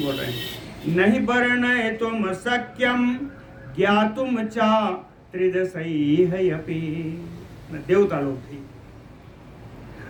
बोल रहे हैं। नहीं वर्णयितुं शक्यं ज्ञातुं च त्रिदशैरपि, देवता लोग भी।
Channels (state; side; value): identical; both; correlation 1.00